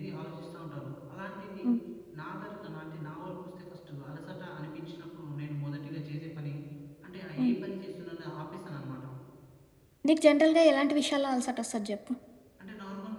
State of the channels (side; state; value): both; identical; correlation 1.00